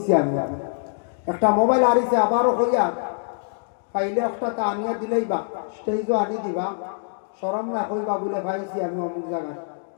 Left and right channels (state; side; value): silent; right; digital silence